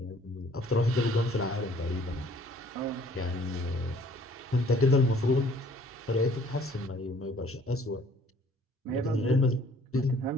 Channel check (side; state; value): both; normal; correlation 0.57